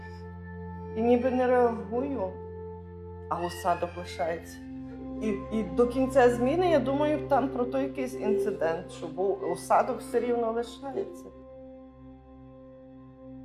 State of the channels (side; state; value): both; identical; correlation 1.00